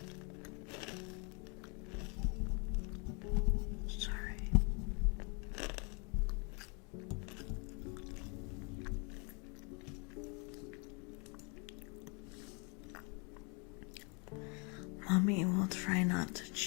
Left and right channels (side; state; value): right; quieter; 34.0 dB